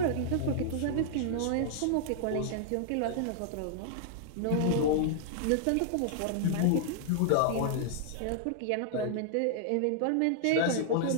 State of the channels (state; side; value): different; both; correlation -0.01